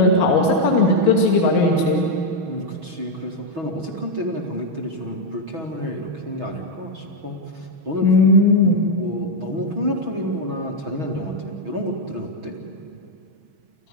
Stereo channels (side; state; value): left; late; 6.2 ms